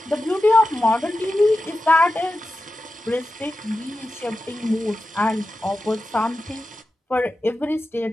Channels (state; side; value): normal; both; correlation 0.92